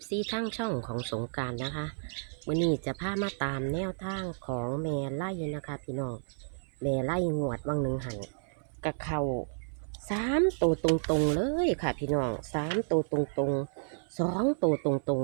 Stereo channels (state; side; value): silent; left; 57 dB below the other